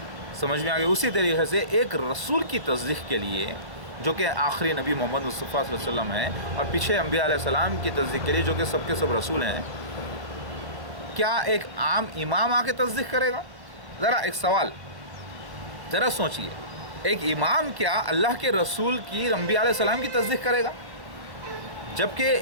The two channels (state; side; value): late; left; 1.0 ms